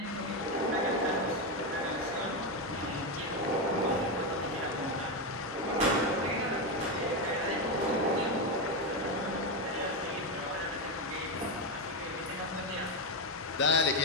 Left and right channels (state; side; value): normal; both; correlation 0.09